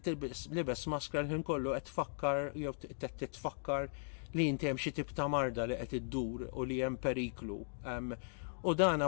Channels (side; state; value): right; silent; digital silence